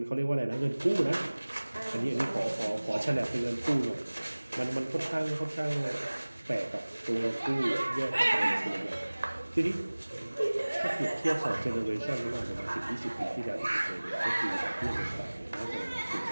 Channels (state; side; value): inverted; both; correlation -1.00